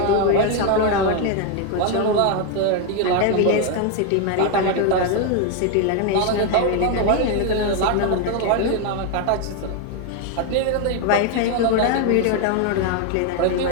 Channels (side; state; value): both; different; correlation 0.01